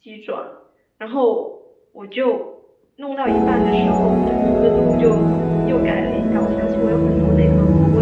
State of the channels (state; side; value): identical; both; correlation 1.00